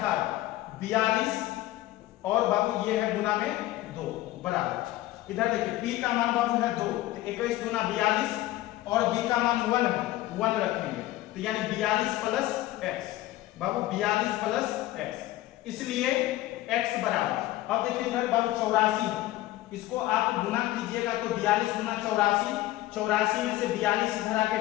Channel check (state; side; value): quieter; right; 16.2 dB